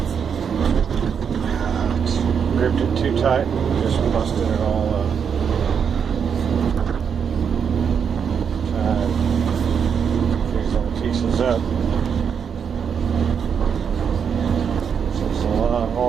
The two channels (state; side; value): quieter; left; 7.1 dB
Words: gripped it too tight and just busted it all up. Try and these little pieces up. So it's a lot